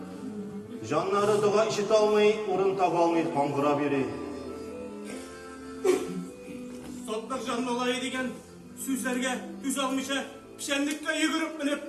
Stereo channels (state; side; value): identical; both; correlation 1.00